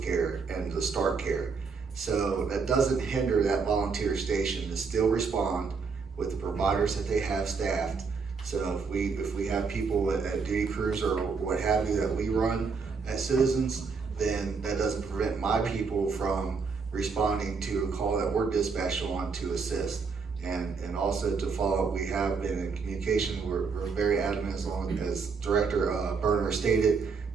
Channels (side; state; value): left; quieter; 5.1 dB